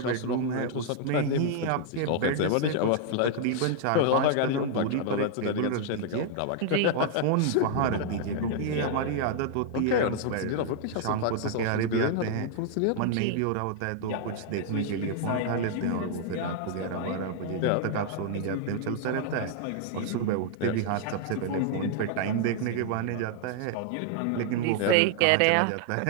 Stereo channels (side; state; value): both; different; correlation -0.01